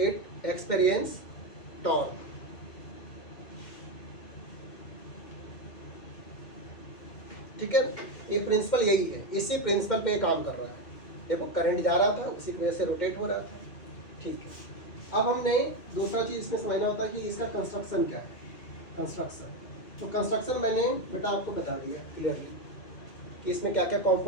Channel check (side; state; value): right; late; 2.1 ms